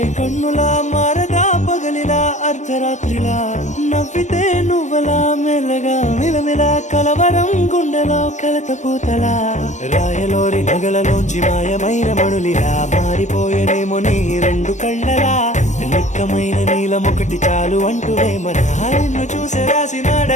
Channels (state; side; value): late; right; 0.34 ms